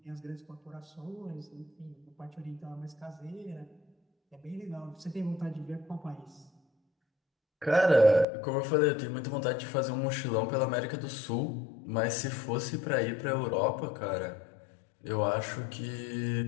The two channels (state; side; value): drops out; right; at 8.2 s